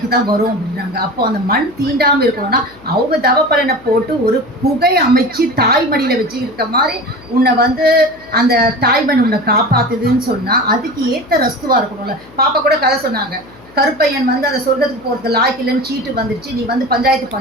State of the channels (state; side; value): noise; left; hum, 24 dB below the sound